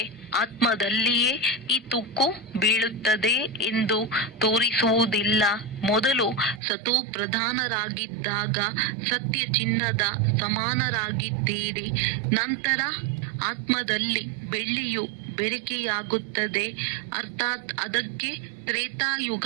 ಆತ್ಮದಲ್ಲಿಯೇ ಈ ತುಕ್ಕು ಬೀಳುತ್ತದೆ ಎಂದು ತೋರಿಸುವುದಿಲ್ಲ. ಮೊದಲು ಸತೋ ಪ್ರಧಾನರಾಗಿದ್ದಾಗ ಸತ್ಯ ಚಿನ್ನದ ಸಮಾನರಾಗಿದ್ದೀರಿ. ನಂತರ ಆತ್ಮದಲ್ಲಿ ಬೆಳ್ಳಿಯು ಬೆರಿಕೆಯಾಗುತ್ತದೆ. ಅರ್ಥಾತ್ ಅದಕ್ಕೆ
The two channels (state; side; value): drops out; left; at 6.6 s